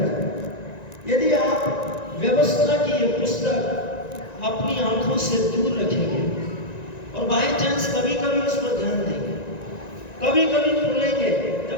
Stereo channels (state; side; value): late; right; 1.9 ms